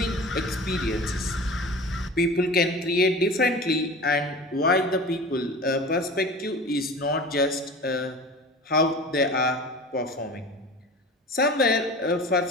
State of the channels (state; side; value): normal; both; correlation 0.36